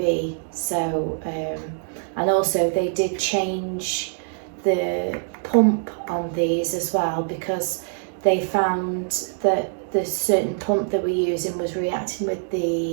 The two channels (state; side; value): silent; left; digital silence